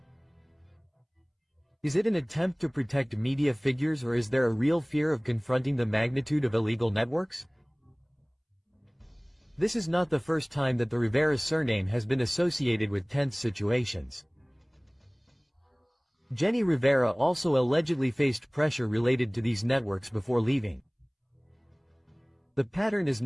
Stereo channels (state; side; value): identical; both; correlation 1.00